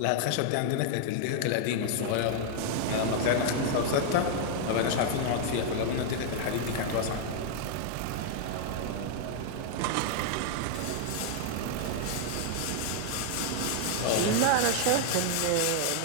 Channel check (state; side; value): different; both; correlation 0.00